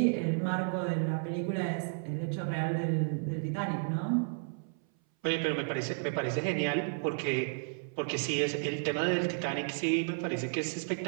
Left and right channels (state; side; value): silent; left; 56 dB below the other